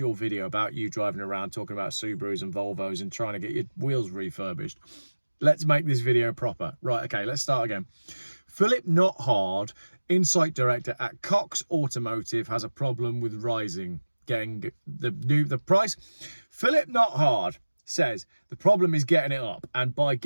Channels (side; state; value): both; inverted; correlation -1.00